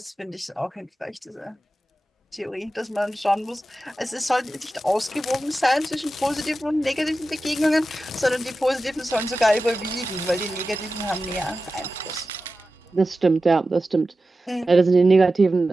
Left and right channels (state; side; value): normal; both; correlation 0.93